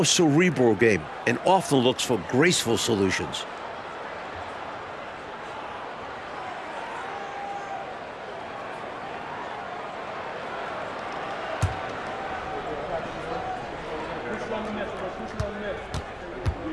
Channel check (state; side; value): identical; both; correlation 1.00